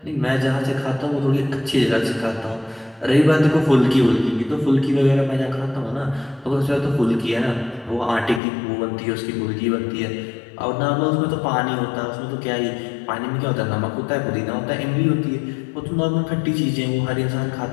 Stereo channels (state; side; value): drops out; right; at 8.4 s